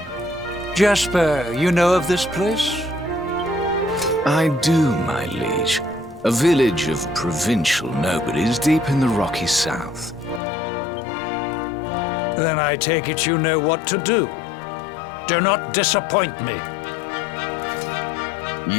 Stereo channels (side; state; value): right; drops out; at 10.4 s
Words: Jasper, you know of this place? I do, my liege. A village of provincial nobodies deep in the rocky south. Then I take it you know what to do. Do not disappoint me.